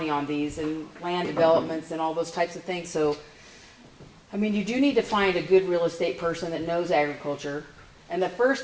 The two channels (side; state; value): both; identical; correlation 1.00